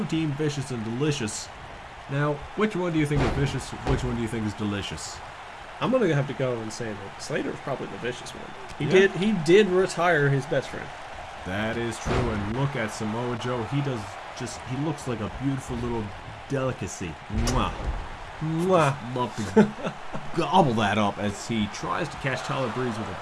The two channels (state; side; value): identical; both; correlation 1.00